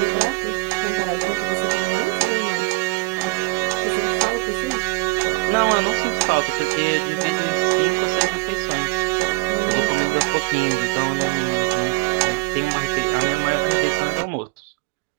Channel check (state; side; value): quieter; left; 22.9 dB